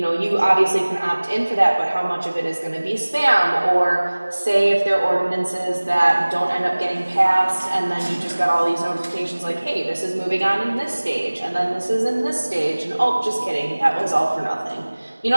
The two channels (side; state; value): both; inverted; correlation -1.00